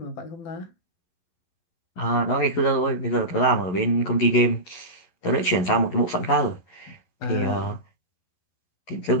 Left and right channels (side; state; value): right; late; 11 ms